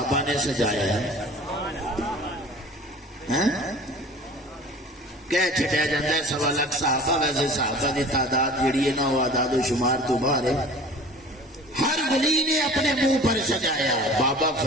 نے سجایا ہے، کہہ چھٹیا جاتا ہے 1.25 لاکھ صحابہ، ویسے صحابہ دی تعداد جڑی ہے نا وہ اعداد و شمار تو باہر ہے۔ ہر ولی نے اپنے منہ پر سجایا، بابا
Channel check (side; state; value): both; normal; correlation 0.43